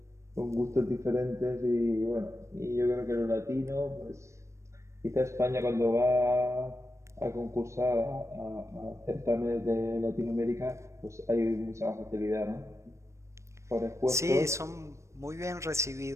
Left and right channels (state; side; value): late; left; 0.14 ms